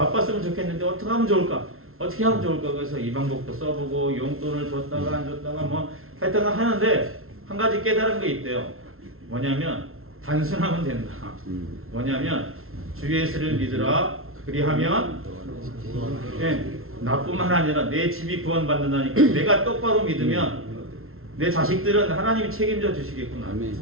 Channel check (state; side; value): late; left; 0.62 ms